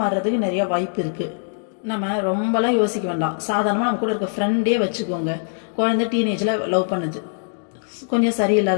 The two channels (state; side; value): silent; right; digital silence